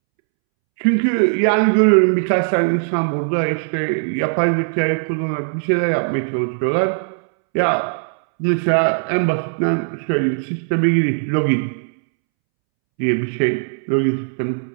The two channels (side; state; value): left; silent; 67 dB below the other